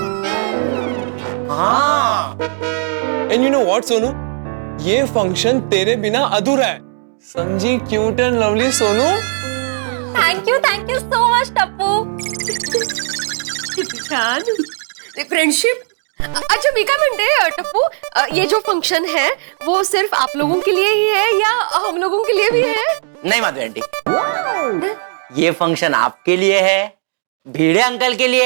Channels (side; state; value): left; silent; digital silence